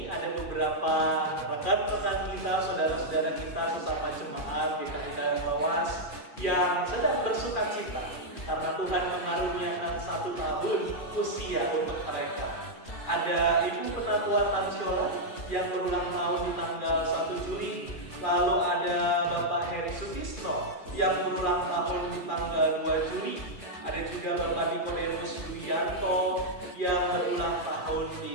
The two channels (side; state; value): right; late; 2.4 ms